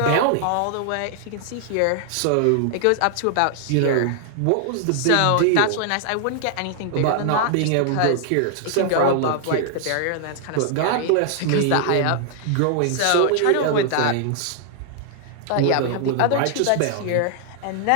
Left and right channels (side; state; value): both; different; correlation 0.00